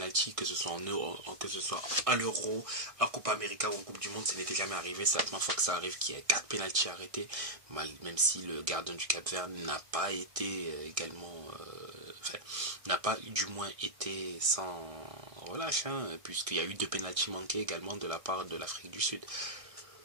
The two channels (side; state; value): left; late; 1.6 ms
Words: que ce soit que ce soit à l'Euro, en Coupe América ou en Coupe du Monde, ça n'était jamais arrivé. C'est la première fois que ça arrive qu'il y ait 4 pénaltys arrêtés, même si le gardien du Cap-Vert n'a pas été n'a pas du moins été sans relâche, puisqu'il y a eu 2 pénaltys manqués également de la part de l'Afrique du Sud.